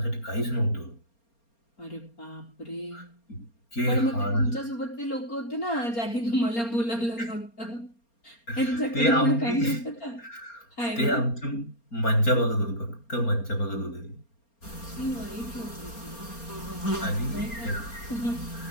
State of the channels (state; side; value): late; right; 4.3 ms